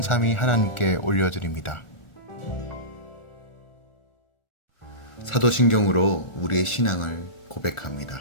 하나님께 올려드립니다. 사도신경으로 우리의 신앙을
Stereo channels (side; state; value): right; late; 1.4 ms